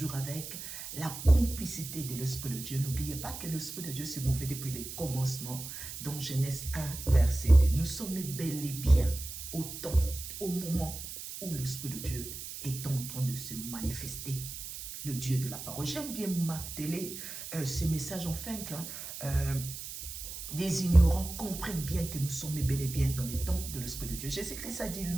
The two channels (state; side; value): noise; right; hiss, 9 dB below the sound